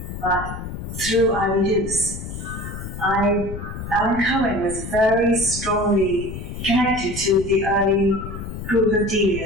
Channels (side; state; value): left; noise; rumble, 8 dB below the sound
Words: but through Ivy Dukes. Alan Cohen was very strongly connected to the early group of